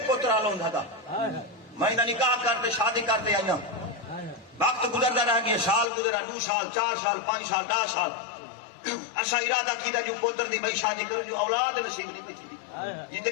پترا لوں تھا میں نہ نکاح کرتے شادی کرتے آئینا وقت گزرتا رہ گیا سال گزرا 2 سال 4 سال 5 سال 10 سال ایسا ارادہ کیتا جو پتر دی بھائی شادی کرو جو اولاد نصیب نہیں بچی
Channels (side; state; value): right; drops out; at 5.9 s